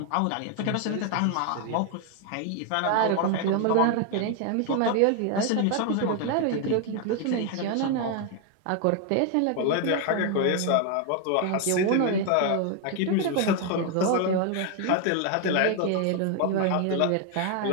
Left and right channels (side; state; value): both; different; correlation 0.01